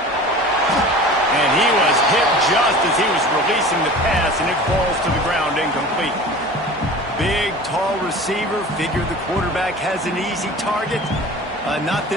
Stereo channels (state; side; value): normal; both; correlation 0.39